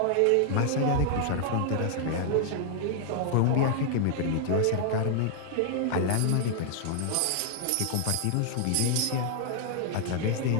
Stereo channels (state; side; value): different; both; correlation -0.01